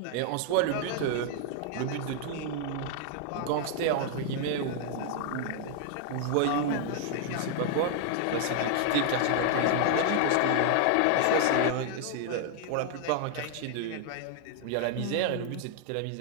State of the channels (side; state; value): both; different; correlation 0.00